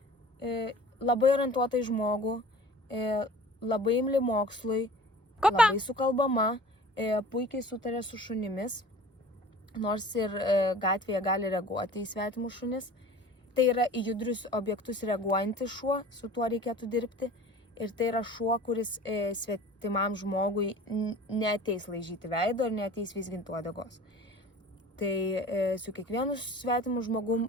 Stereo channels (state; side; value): normal; both; correlation 0.43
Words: labai orientuota į žmogų, labai imli mokslui, labai sukalbama, puikiai sutarė su šunimis, nors ir gatvėje gali reaguoti į svetimus šunis. Tai yra į judrius objektus reaguojantis šuo, su tuo reikėtų dirbti. Ir tai yra šuo, kuris svetimam žmogui neateis laižyti veido ir neateis vizginti uodegos. Tai su kiekvienu svetimu žmogum